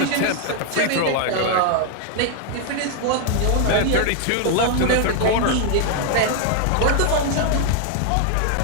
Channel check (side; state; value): both; different; correlation 0.00